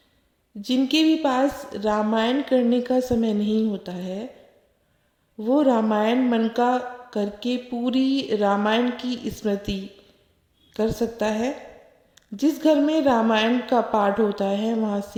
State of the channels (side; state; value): both; identical; correlation 1.00